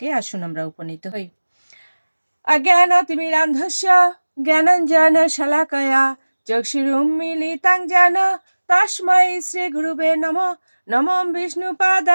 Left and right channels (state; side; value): inverted; both; correlation -1.00